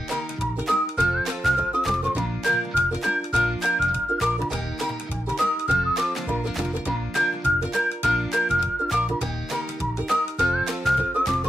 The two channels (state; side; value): normal; both; correlation 0.89